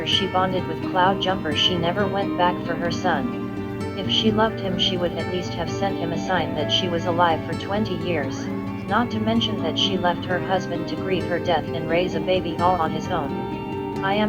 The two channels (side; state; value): both; identical; correlation 1.00